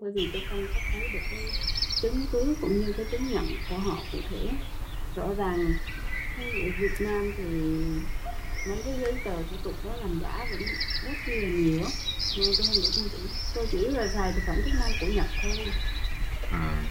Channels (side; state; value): both; identical; correlation 1.00